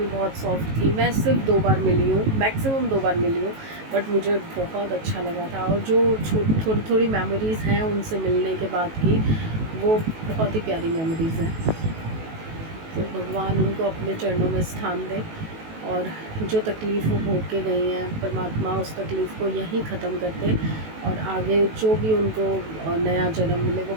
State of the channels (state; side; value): late; left; 18 ms